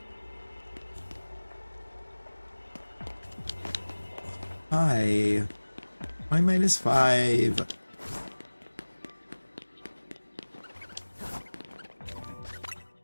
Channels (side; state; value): both; inverted; correlation -1.00